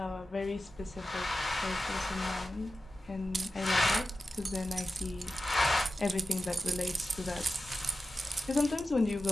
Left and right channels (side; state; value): both; normal; correlation 0.93